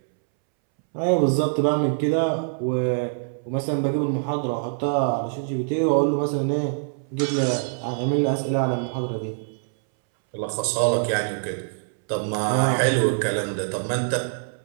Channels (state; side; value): silent; left; 62 dB below the other